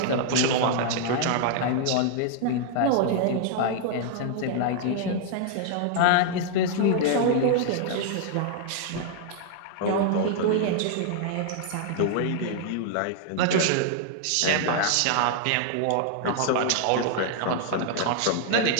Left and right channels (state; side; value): different; both; correlation 0.00